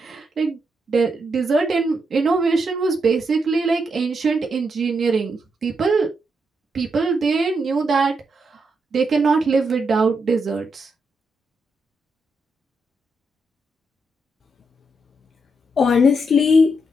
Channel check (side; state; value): both; normal; correlation 0.81